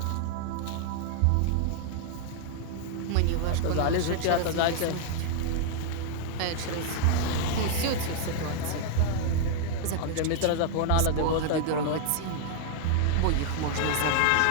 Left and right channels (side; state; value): both; different; correlation 0.00